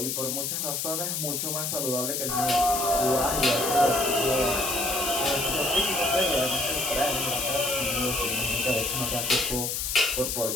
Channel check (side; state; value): left; noise; hiss, 1 dB below the sound